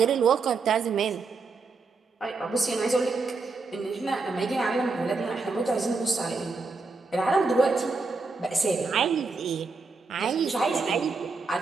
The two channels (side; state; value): left; quieter; 4.2 dB